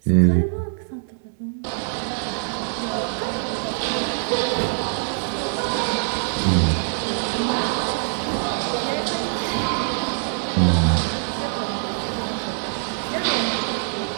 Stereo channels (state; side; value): silent; left; 61 dB below the other